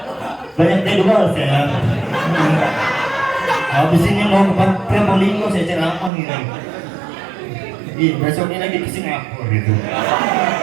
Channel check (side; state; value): left; drops out; at 6.1 s